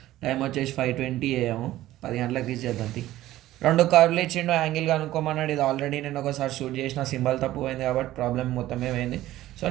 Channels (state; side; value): quieter; left; 15.1 dB